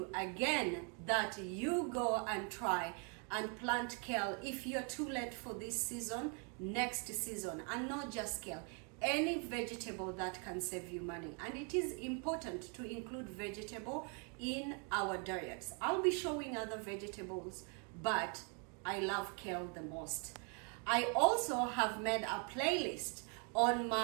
again that you go and try and plant kale. If you're too late for this season, next season, and not just kale, any vegetable that can save you money. And it is important to include vegetable in our diets. I'll be showing other vegetables, but I love kale the most. I also have made a playlist on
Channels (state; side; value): quieter; left; 37.3 dB